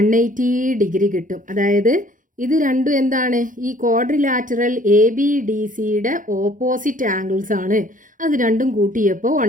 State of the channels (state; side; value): late; left; 0.38 ms